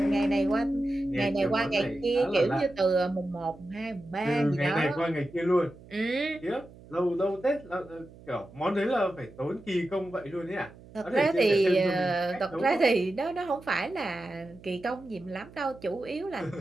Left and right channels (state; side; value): noise; right; hum, 21 dB below the sound